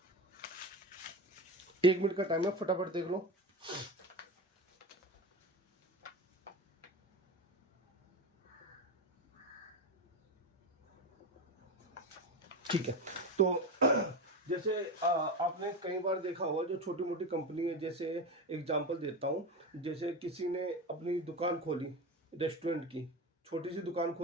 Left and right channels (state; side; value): normal; both; correlation 0.21